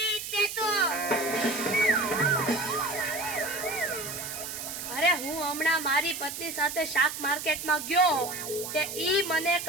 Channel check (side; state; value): right; noise; hiss, 7 dB below the sound